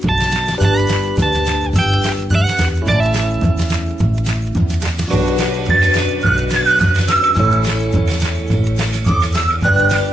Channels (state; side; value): normal; both; correlation 0.86